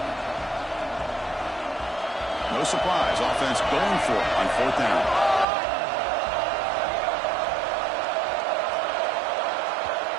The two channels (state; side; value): drops out; left; at 5.5 s